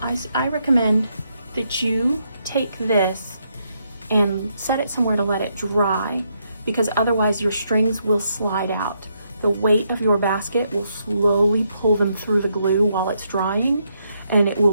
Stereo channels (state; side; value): inverted; both; correlation -0.77